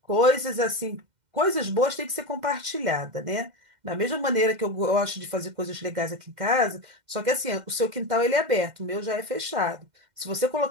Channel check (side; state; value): left; late; 2.1 ms